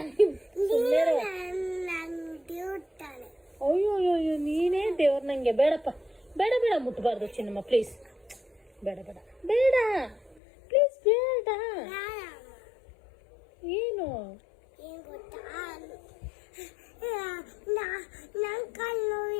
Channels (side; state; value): right; drops out; at 10.4 s